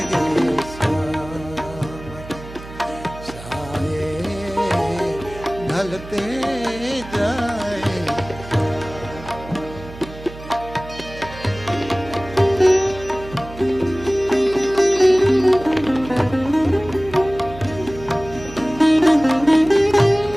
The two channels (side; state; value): right; noise; hum, 15 dB below the sound